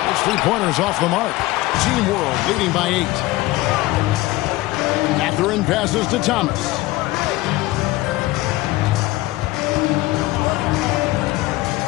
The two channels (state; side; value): quieter; right; 18.9 dB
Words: Those three-pointers off the mark. Team World leading by 8. Catherine passes to Thomas.